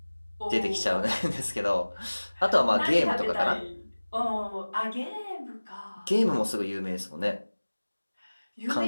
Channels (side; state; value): both; inverted; correlation -1.00